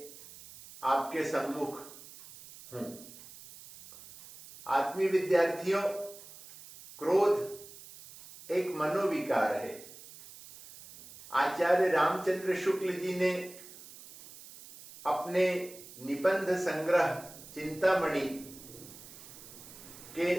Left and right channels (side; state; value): right; noise; hiss, 17 dB below the sound